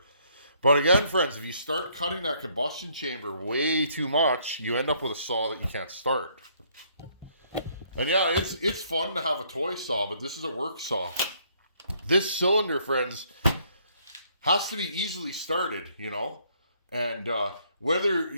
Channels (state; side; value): inverted; both; correlation -0.66